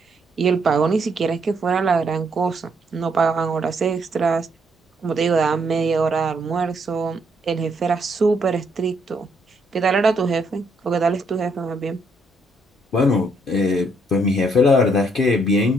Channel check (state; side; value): normal; both; correlation 0.72